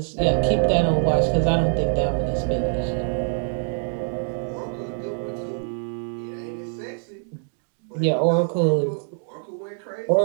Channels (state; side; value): silent; left; digital silence